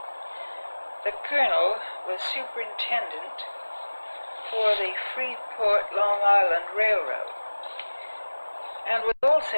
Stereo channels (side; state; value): both; inverted; correlation -1.00